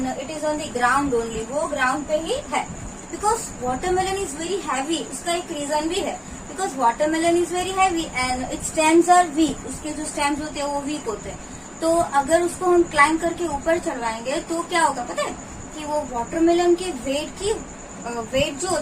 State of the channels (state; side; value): identical; both; correlation 1.00